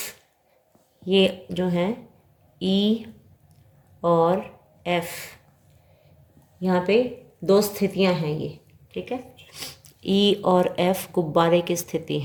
ये जो हैं ई और एफ, यहाँ पे दो स्थितियाँ हैं ये, ठीक है। ई और एफ गुब्बारे की स्थिति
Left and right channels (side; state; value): both; identical; correlation 1.00